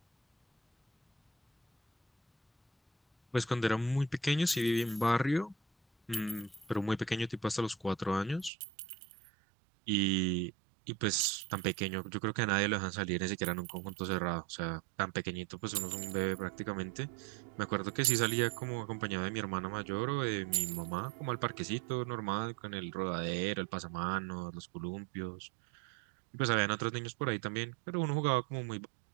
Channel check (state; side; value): drops out; left; at 8.5 s